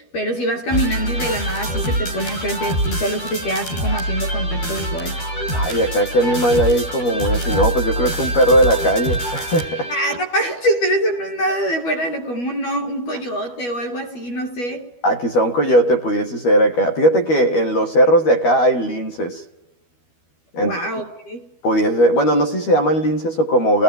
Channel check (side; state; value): right; late; 12 ms